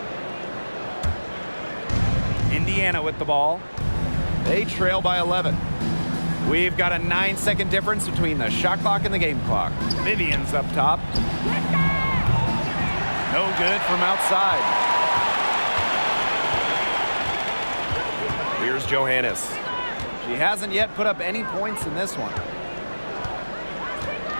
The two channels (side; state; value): both; inverted; correlation -1.00